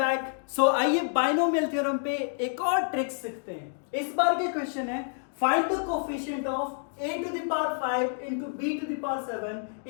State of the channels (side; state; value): right; silent; digital silence